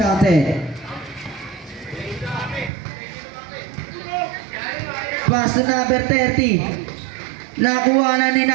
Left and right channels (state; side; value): drops out; left; at 2.7 s